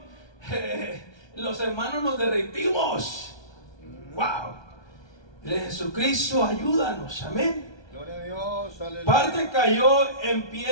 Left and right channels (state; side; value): late; right; 1.2 ms